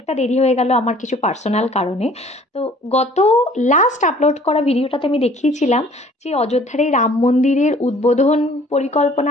দেরি হয়ে গেল আমার কিছু পার্সোনাল কারণে। তো গত লাস্ট আপলোড করা ভিডিওটাতে আমি দেখিয়েছিলাম যে অযোধ্যার এই রাম মন্দিরের উদ্বোধন পরিকল্পনা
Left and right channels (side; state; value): both; normal; correlation 0.53